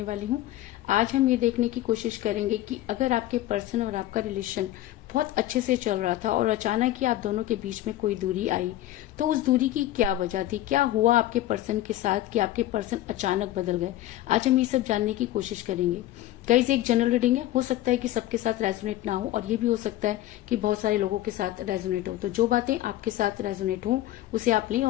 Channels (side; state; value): right; quieter; 14.6 dB